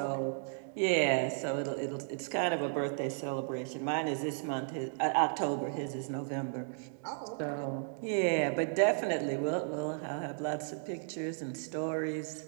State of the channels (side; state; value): left; silent; digital silence